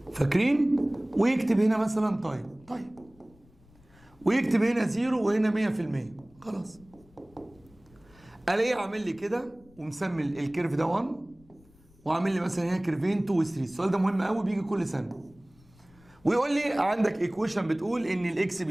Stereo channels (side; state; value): left; noise; rumble, 28 dB below the sound